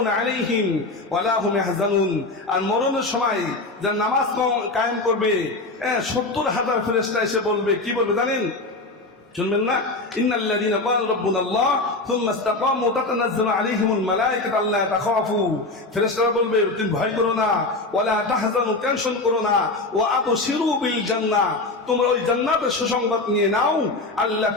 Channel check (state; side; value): quieter; right; 3.1 dB